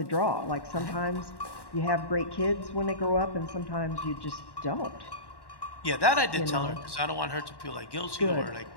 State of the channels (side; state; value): right; late; 1.1 ms